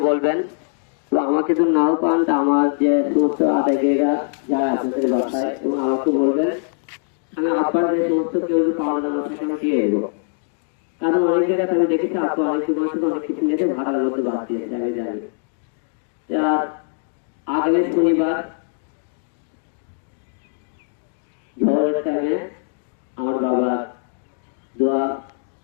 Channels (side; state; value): right; silent; digital silence